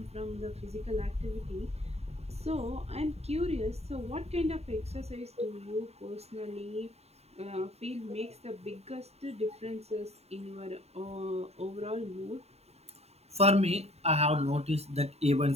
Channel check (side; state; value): left; late; 0.30 ms